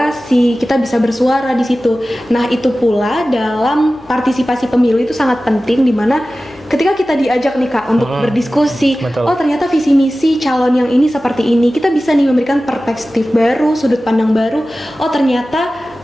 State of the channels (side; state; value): left; noise; hum, 29 dB below the sound